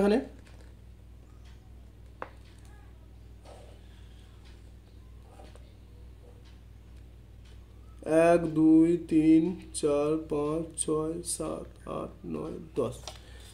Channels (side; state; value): both; identical; correlation 1.00